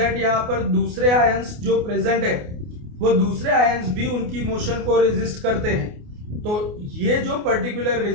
यहाँ पर दूसरे आयंस जो प्रेजेंट है वो दूसरे आयंस भी उनकी मोशन को रेजिस्ट करते हैं। तो ये जो पर्टिकुलर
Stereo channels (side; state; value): left; late; 28 ms